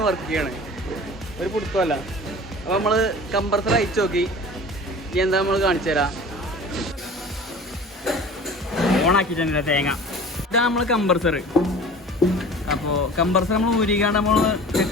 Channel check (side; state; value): both; normal; correlation 0.41